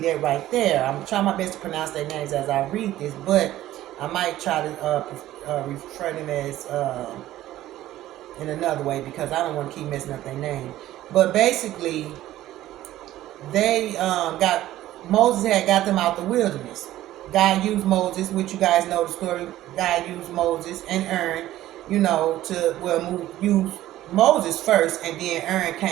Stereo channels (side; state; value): left; quieter; 14.4 dB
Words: that right there. I'm trying my best to pronounce their names as I read this, but I might try to refer them as in another way, because I don't want to keep messing up their name. But basically, they Moses had got them out the wilderness. God used Moses, which you guys know the story. God used Moses and Aaron, use Moses first, and then Aaron